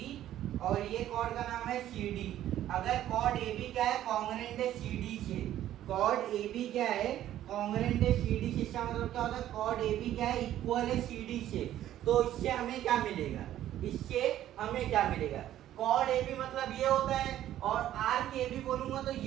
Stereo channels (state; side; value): quieter; left; 12.5 dB